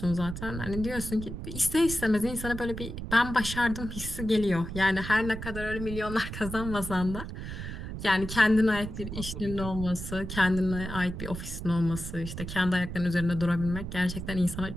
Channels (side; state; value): right; noise; rumble, 8 dB below the sound